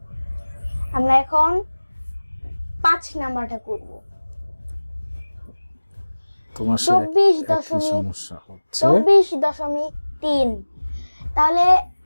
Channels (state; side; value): inverted; both; correlation -1.00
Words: আমরা এখন ৫ নাম্বারটা করব। ২৪.৩, তাহলে